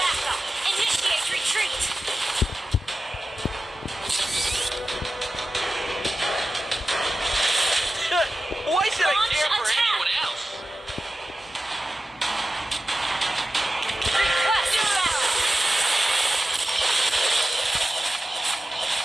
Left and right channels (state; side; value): normal; both; correlation 0.93